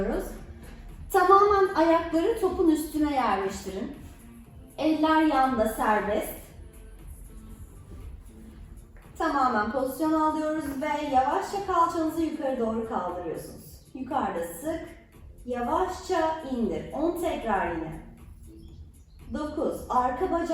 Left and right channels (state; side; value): identical; both; correlation 1.00